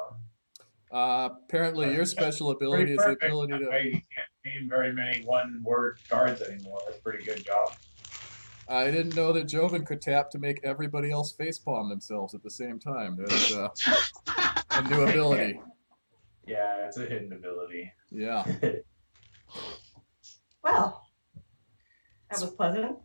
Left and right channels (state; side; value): inverted; both; correlation -1.00